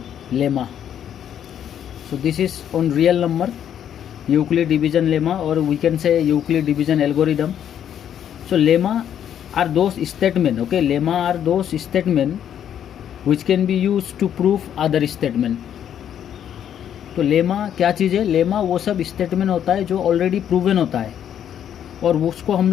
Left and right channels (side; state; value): right; quieter; 9.6 dB